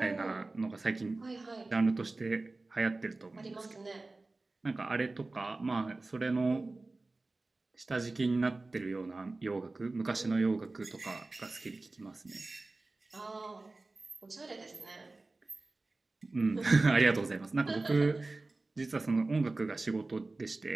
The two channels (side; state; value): left; quieter; 3.2 dB